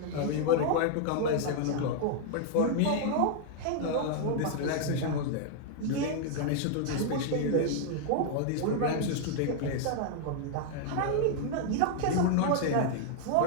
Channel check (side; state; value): both; different; correlation 0.00